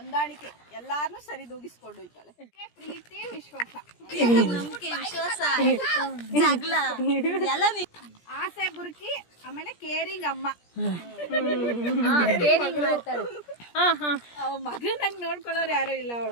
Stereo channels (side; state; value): right; late; 17 ms